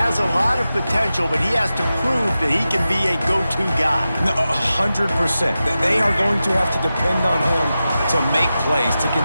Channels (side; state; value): both; inverted; correlation -0.93